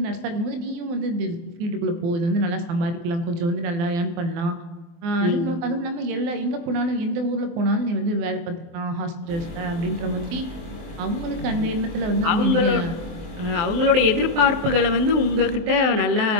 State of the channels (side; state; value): left; late; 24 ms